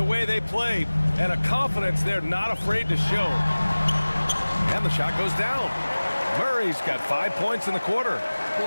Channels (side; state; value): both; inverted; correlation -1.00